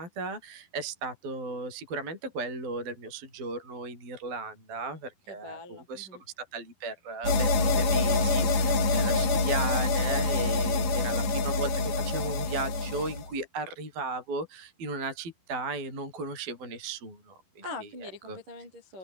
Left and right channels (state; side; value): late; left; 11 ms